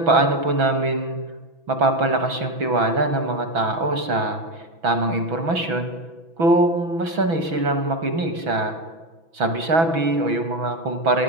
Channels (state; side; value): late; left; 6.1 ms